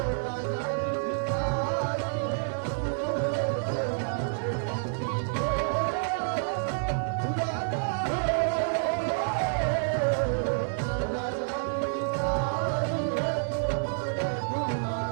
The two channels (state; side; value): silent; left; 59 dB below the other